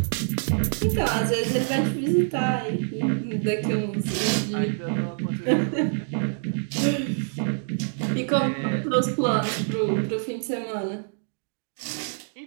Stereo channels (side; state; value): left; silent; digital silence